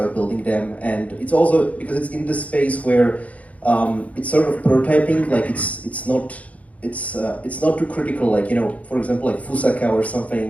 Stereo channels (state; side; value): late; right; 0.068 ms